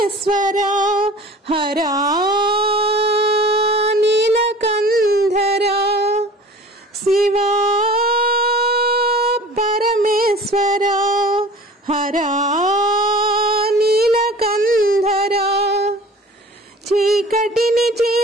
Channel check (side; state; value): both; normal; correlation 0.44